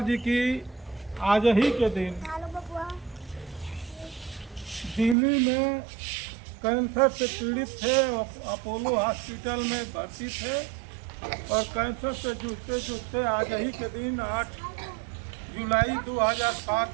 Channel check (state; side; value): drops out; left; at 5.2 s